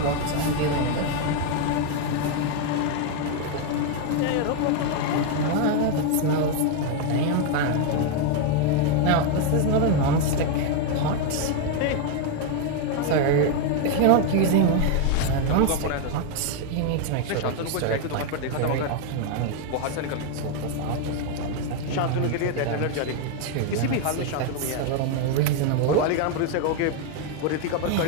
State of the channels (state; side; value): different; both; correlation 0.01